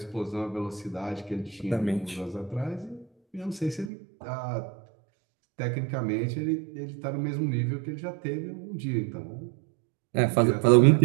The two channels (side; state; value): left; drops out; at 3.9 s